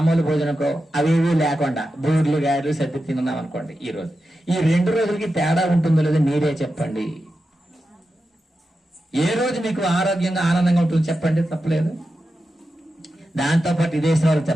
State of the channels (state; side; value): normal; both; correlation 0.90